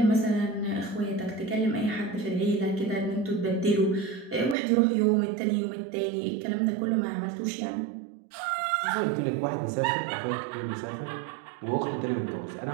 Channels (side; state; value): left; drops out; at 4.5 s